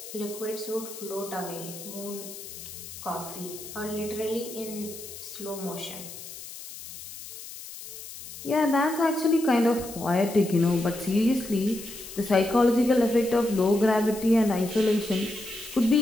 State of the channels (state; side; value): noise; left; hiss, 13 dB below the sound